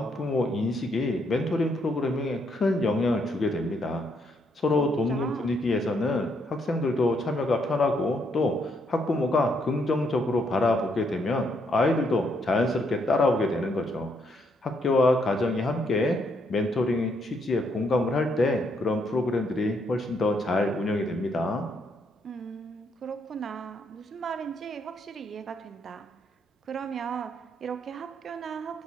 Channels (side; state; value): both; normal; correlation 0.74